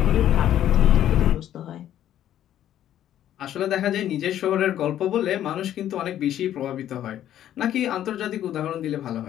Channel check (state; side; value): quieter; right; 11.5 dB